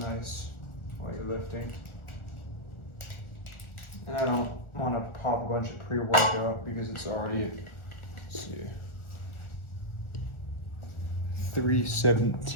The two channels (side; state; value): right; late; 1.4 ms